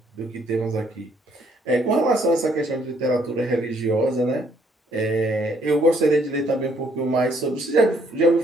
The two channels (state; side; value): normal; both; correlation 0.67